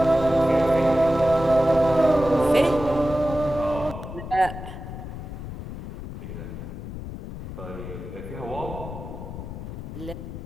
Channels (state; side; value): noise; left; rumble, 9 dB below the sound